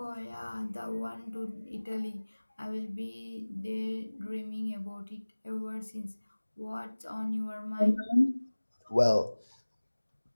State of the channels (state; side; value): inverted; both; correlation -1.00